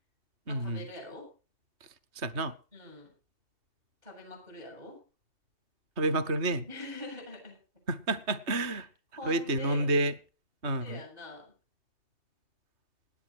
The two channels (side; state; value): left; late; 3.2 ms